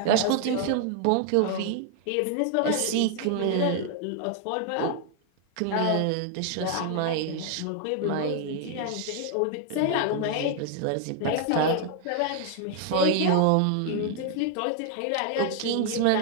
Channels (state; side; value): different; both; correlation 0.00